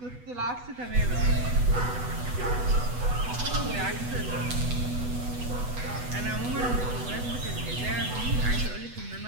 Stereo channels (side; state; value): left; late; 8.1 ms